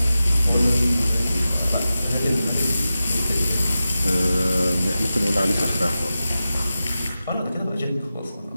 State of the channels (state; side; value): inverted; both; correlation -0.93